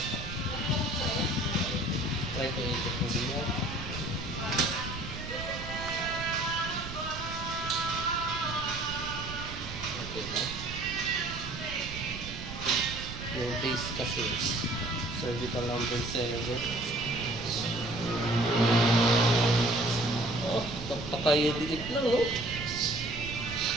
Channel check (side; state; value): right; noise; rumble, 10 dB below the sound